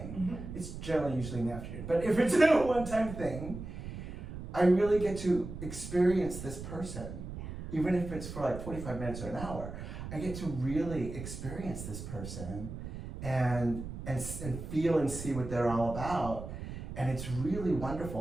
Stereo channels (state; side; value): noise; right; rumble, 9 dB below the sound